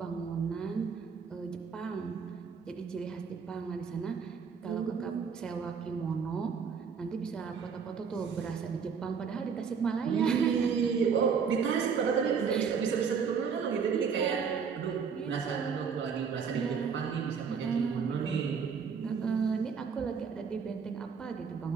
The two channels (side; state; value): left; quieter; 6.2 dB